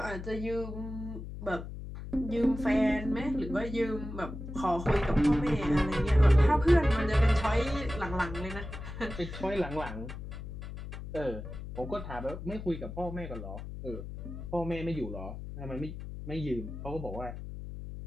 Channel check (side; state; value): left; noise; hum, 9 dB below the sound